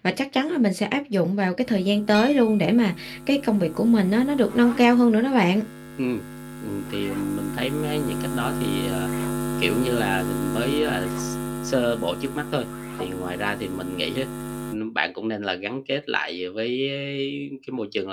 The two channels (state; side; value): identical; both; correlation 1.00